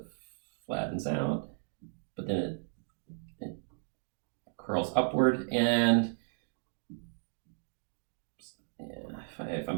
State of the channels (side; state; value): left; silent; digital silence